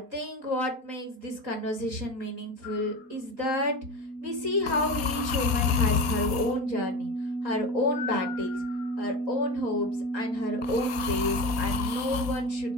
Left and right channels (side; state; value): left; late; 4.2 ms